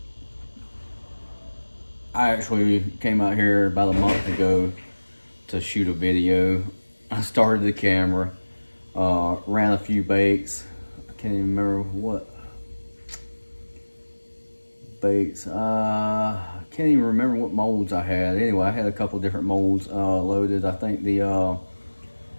I actually came out here about a month ago to shoot a video. I started the camera, ran a few baits. I can't even remember what baits. I can't even remember what molds I had. Anyway, I had a couple different molds loaded. I think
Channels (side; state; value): both; inverted; correlation -1.00